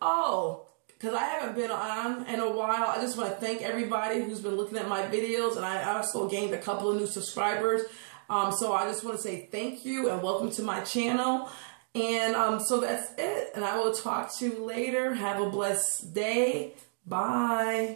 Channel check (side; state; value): left; silent; digital silence